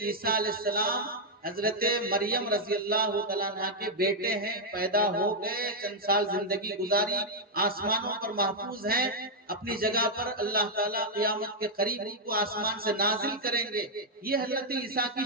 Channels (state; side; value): normal; both; correlation -0.02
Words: علیہ السلام حضرت مریم رضی اللہ تعالیٰ عنہ کے بیٹے ہیں، پیدا ہو گئے، چند سال زندگی گزاری، آسمانوں پر محفوظ ہیں، اپنی جگہ پر اللہ تعالیٰ قیامت کے قریب ان کو آسمان سے نازل کریں گے۔ یہ حضرت عیسیٰ کی